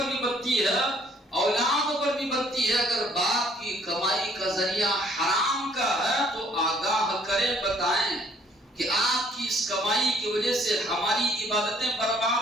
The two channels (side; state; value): both; normal; correlation 0.62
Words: بھی بنتی ہے، اولاد پر بھی بنتی ہے۔ اگر باپ کی کمائی کا ذریعہ حرام کا ہے تو آگاہ کریں، بتائیں، کہ آپ کی اس کمائی کی وجہ سے ہماری عبادتیں